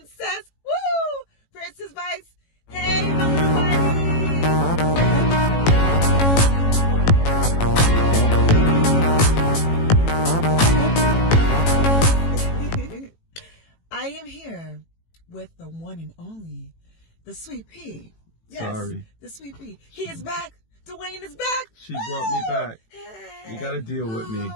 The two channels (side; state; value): right; late; 18 ms